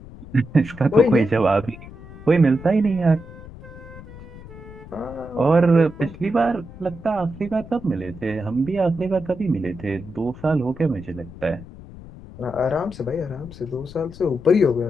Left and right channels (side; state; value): left; noise; rumble, 16 dB below the sound